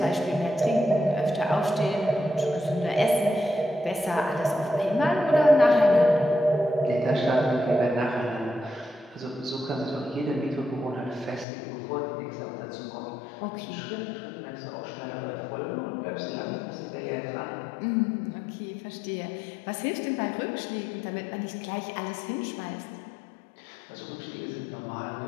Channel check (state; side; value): drops out; right; at 11.5 s